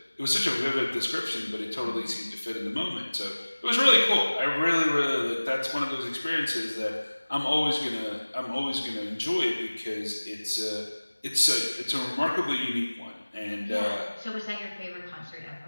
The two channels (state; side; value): inverted; both; correlation -1.00